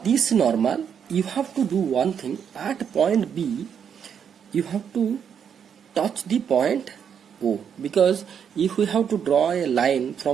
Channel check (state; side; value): quieter; left; 7.8 dB